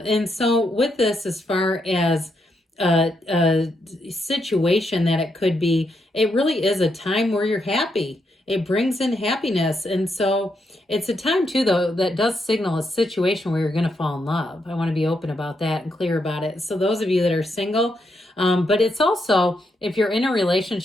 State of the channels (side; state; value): both; normal; correlation 0.80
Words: so with this, as far as a situation that it could be, it really is a time where you're happy. It brings in happiness. And so it's a time too, though, that does signal a situation where you're going to fall in love. I want to be open about that and clear about it. So those of you that are single, but it's also, if you're in a